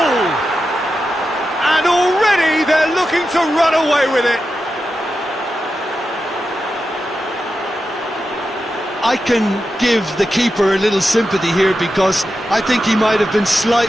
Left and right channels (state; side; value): normal; both; correlation 0.90